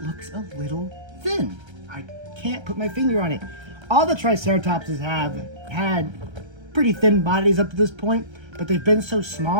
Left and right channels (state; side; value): late; left; 1.3 ms